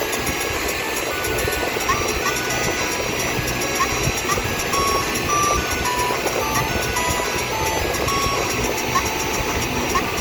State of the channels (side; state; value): both; identical; correlation 1.00